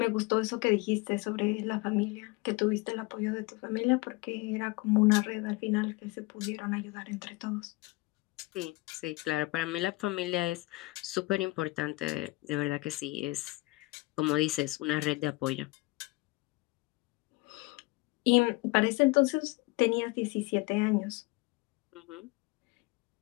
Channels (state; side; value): quieter; right; 23.1 dB